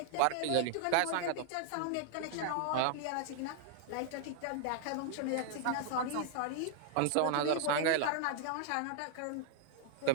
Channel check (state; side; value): different; both; correlation -0.01